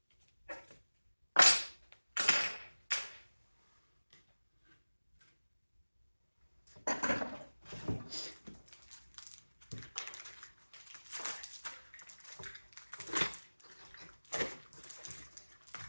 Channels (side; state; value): both; inverted; correlation -1.00